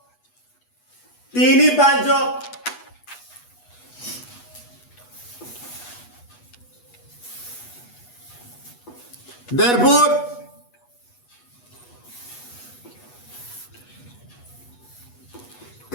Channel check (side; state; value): right; late; 8.2 ms